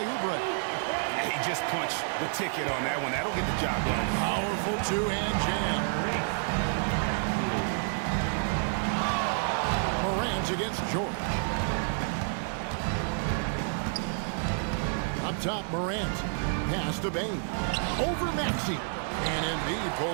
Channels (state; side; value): silent; left; 58 dB below the other